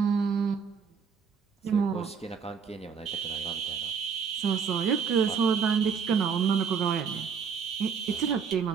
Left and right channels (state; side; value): quieter; left; 6.4 dB